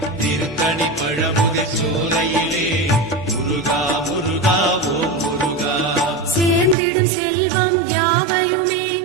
திருத்தணி பழமுதி சோலையிலே முருகா முருகா ஓம் முருகா. சேர்ந்திடும் செல்வம் யாவையுமே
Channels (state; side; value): drops out; left; at 6.8 s